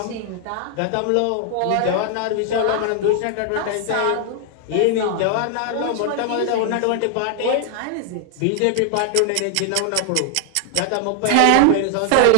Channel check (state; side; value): different; both; correlation 0.00